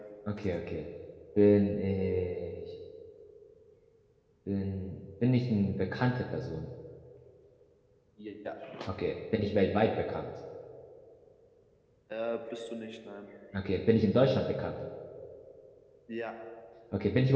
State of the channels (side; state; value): both; identical; correlation 1.00